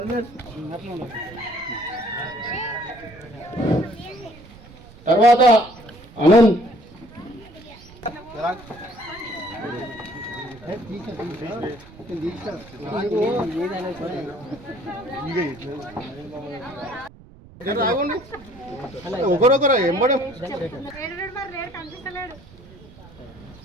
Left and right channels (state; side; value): noise; right; rumble, 21 dB below the sound